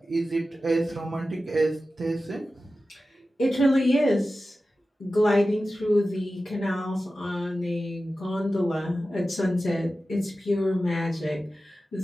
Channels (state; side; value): normal; both; correlation 0.94